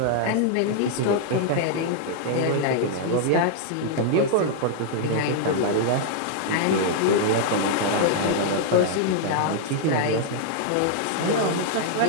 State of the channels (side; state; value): both; different; correlation -0.01